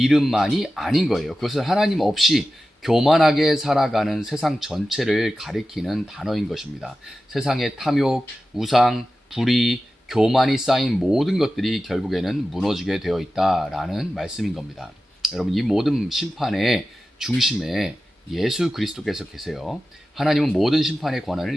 아닌 거예요. 그것은 하나님 없이 교만하게 살아가는 세상 전체를 가리키는 단어인 것입니다. 세상의 탐욕, 우상, 불의, 교만이 쌓인 모든 것들이 결국에는 무너지게 되어 있다라는 말씀인 겁니다. 여러분, 이 모든 심판의 중심에 예수 그리스도께서 계세요. 하나님은 모든 심판의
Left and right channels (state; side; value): normal; both; correlation 0.94